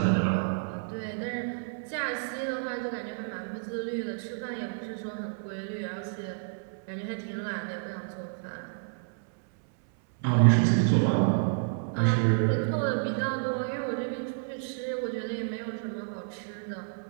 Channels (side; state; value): left; silent; 58 dB below the other